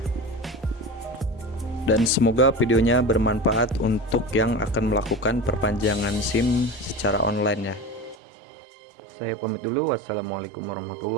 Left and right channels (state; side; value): drops out; left; at 8.2 s